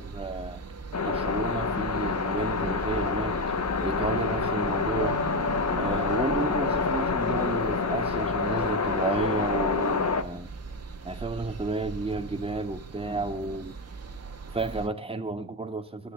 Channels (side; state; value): both; normal; correlation 0.11